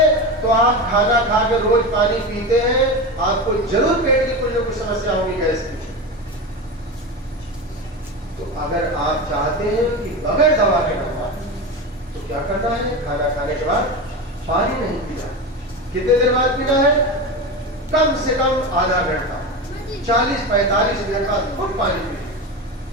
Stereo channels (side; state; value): both; normal; correlation 0.22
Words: तो आप खाना खा के रोज पानी पीते हैं, आपको जरूर पेट की कुछ ना कुछ समस्या होगी, गैस की। तो अगर आप चाहते हैं कि बगैर दवा के नंबर, तो क्या करना है? खाना खाने के बाद पानी नहीं पीना। कितने देर बाद पीना है? कम से कम आधा घंटा, 40-45 मिनट बाद खूब पानी पीजिए,